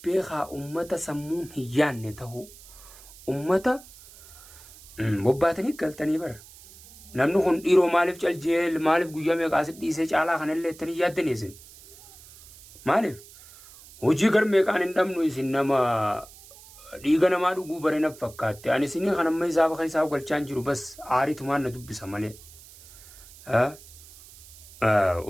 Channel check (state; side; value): noise; right; hiss, 21 dB below the sound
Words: beekaa ummata sammuun hin yaanne ta'uu ummata bobbaatanii galtanii bara namni kun dhiiroo maaliif caljeel maaliif guyyaa meeqaasit dhiisee caalaa kanallee ittanii yaaddanii isin maaliif hojii gar meeqaan hin dhabnu isin nama dhiiga namaa dhuguu bare na fakkaatte ani isinii kan amma isaaf isaa galchaan jiru bas aaritumaan na dubbisa malee